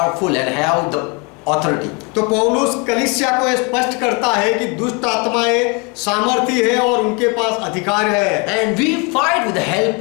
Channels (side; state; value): right; quieter; 30.4 dB